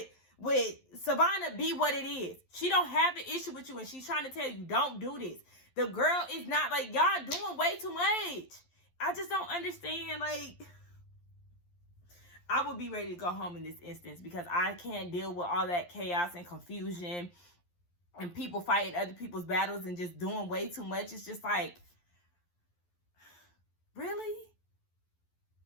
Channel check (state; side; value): late; right; 11 ms